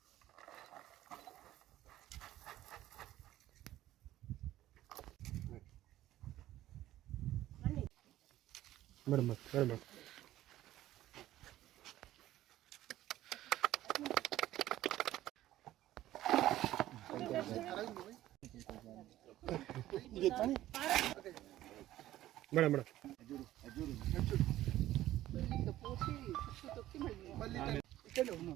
మేడం మేడం మేడం మేడం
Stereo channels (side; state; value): left; quieter; 14.3 dB